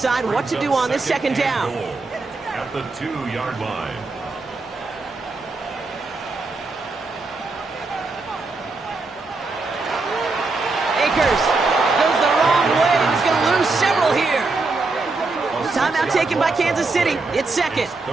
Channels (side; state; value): left; quieter; 3.6 dB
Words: what to do on this 2nd down. At the 2-yard line. Akers goes the wrong way. He's going to lose several here. Timeout taken by Kansas City. It's 2nd.